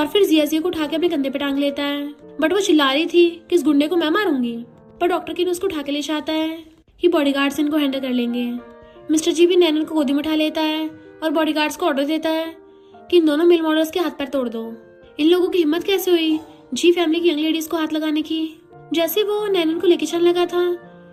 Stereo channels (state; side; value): identical; both; correlation 1.00